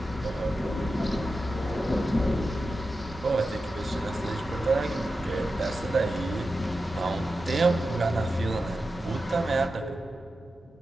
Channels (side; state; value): both; normal; correlation 0.91